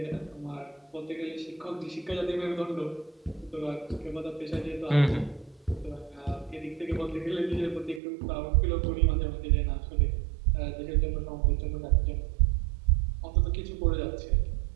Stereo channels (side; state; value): left; drops out; at 8.0 s